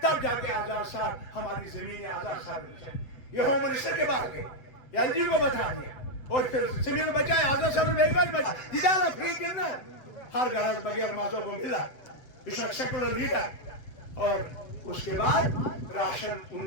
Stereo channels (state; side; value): late; right; 7.8 ms